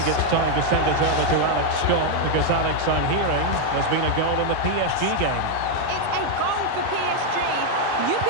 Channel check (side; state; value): both; different; correlation 0.01